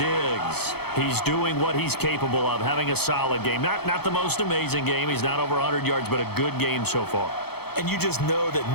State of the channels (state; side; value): late; right; 0.97 ms